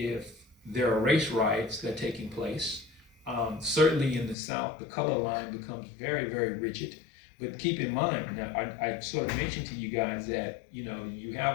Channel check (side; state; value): right; drops out; at 4.4 s